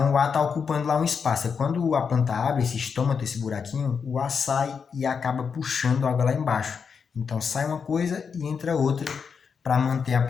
o ar está ocupando lá um espaço. Quando a planta abre esse estômago, esse buraquinho, o ar sai e acaba puxando a água lá embaixo. Então sai uma coisa e entra outra para manter a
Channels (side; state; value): right; quieter; 6.1 dB